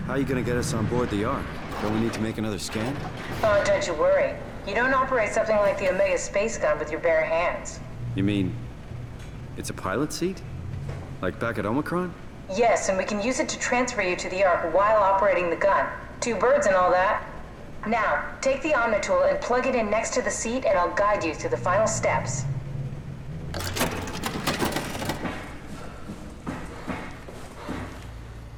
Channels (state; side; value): identical; both; correlation 1.00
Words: How are you gonna get us on board the Ark? Don't we need to make another scan? Oh, don't you worry. You don't operate something like the Omega space gun with your bare hands. You mean... it's a pilot seat? Like back at Omicron? Yes, and we can use it to transfer you to the Ark while operating the gun. 2 birds and all that. Now, take the Omnitool and plug it in next to the seat and I'll guide you through the final steps.